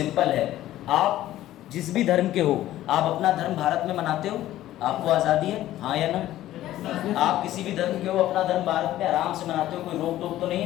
है, आप जिस भी धर्म के हो, आप अपना धर्म भारत में मनाते हो? आपको आज़ादी है, हाँ या ना? आप किसी भी धर्म के हो, अपना धर्म भारत में आराम से मनाते हो, कोई रोक टोक तो नहीं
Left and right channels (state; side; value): quieter; right; 14.0 dB